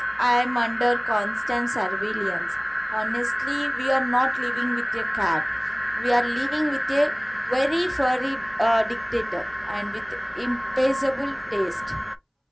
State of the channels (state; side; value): identical; both; correlation 1.00